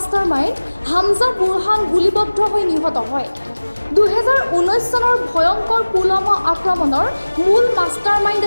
হামজা বুৰহান গুলীবদ্ধ হৈ নিহত হয়। 2019 চনৰ ভয়ংকৰ পুলৱামা আক্ৰমণৰ মূল মাষ্টাৰমাইণ্ড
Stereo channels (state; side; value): inverted; both; correlation -1.00